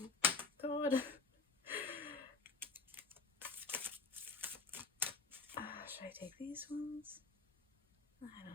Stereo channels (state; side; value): quieter; right; 4.0 dB